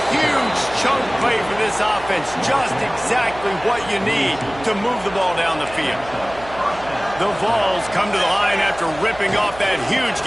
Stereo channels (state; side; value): noise; right; hum, 17 dB below the sound